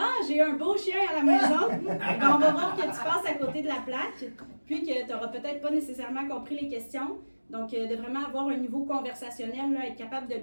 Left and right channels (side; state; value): both; inverted; correlation -1.00